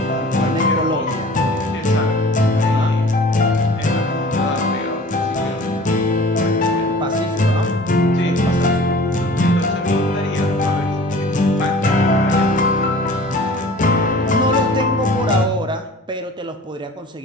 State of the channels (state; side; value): normal; both; correlation 0.45